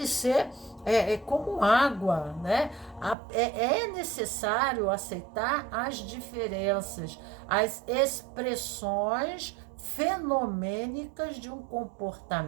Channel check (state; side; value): drops out; left; at 3.2 s